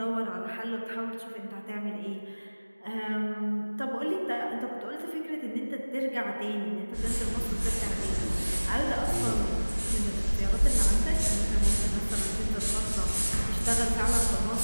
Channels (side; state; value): both; inverted; correlation -1.00